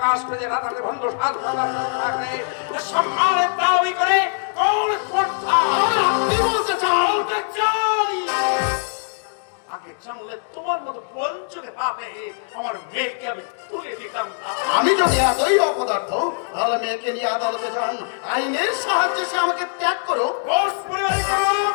করে রাতাতে ভঙ্গ সাজ থাকলে সম্মানের দাবি করে কোন স্পর্ধা? আপনি বলতে চান? বলতে চাই আগে জানলে তোমার মতো পঞ্চকে পাবে আমার মেয়েকে আমি তুলে দিতাম না। আমি যদি এতই অপদার্থ, তাহলে মেয়েকে নিয়ে আদালতে যান, আইনের সাহায্যে সে আমাকে ত্যাগ করো। দোষ পরিবারের কারণ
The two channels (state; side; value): silent; right; digital silence